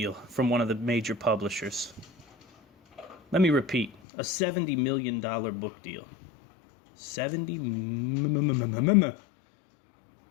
from one of the major publishers. Let me repeat, a $70 million book deal. 70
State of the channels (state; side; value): drops out; right; at 4.0 s